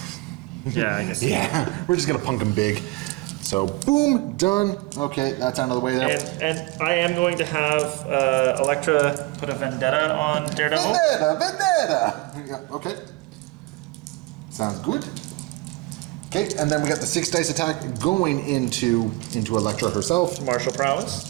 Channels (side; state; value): left; quieter; 22.8 dB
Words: Yeah, I guess. Yeah, we're just going to punk them big. So, boom, done. Okay, that's out of the way there. And I am going to have Elektra put a vendetta on Daredevil. Vendetta! Yeah, okay. Sounds good. Okay, and then we got the 6 dice attack going into Elektra herself. Martial